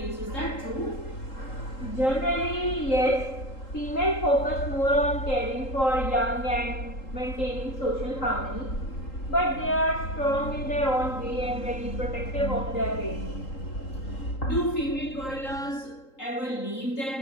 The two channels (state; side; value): late; right; 3.8 ms